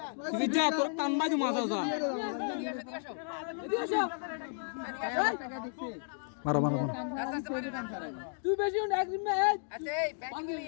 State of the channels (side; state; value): right; silent; digital silence